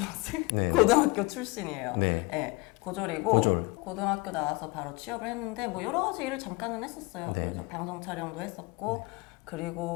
네. 고등학교 출신이에요. 네. 네, 고졸이고 고졸. 고등학교 나와서 바로 취업을 했는데 뭐 여러 가지 일을 잠깐은 했었어요. 네. 그래서 방송 촬영도 했었고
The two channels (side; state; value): right; quieter; 24.7 dB